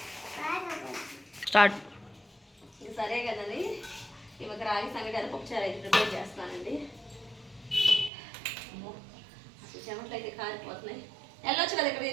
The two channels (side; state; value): left; drops out; at 8.1 s